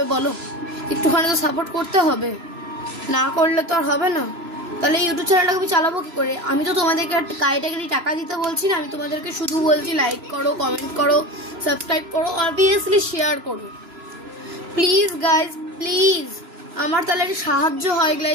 বলো? একটুখানি তো সাপোর্ট করতে হবে, না করলে তো আর হবে না। তাহলে ইউটিউব চ্যানেলটাকে আমি চালাবো কি করে? আমি তো তোমাদেরকে কাইটাকে টাকা দিতে বলছি না, আমি তোমাদেরকে শুধু বলছি লাইক করো, কমেন্ট করো, সাবস্ক্রাইব করো, অবভিয়াসলি শেয়ার করো। প্লিজ গাইজ, প্লিজ আমার তাহলে সাহায্য হয়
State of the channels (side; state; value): left; late; 3.0 ms